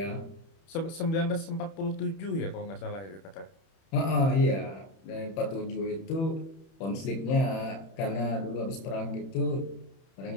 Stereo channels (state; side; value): late; right; 31 ms